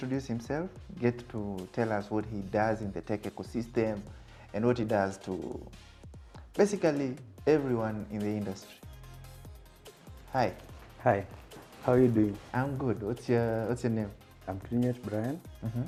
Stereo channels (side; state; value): both; identical; correlation 1.00